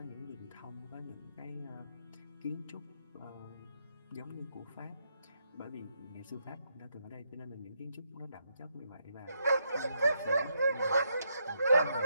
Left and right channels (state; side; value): inverted; both; correlation -0.78